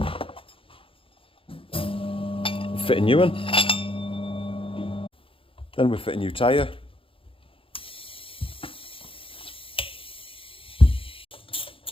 fit a new one, then we fit a new tyre,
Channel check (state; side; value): late; right; 0.26 ms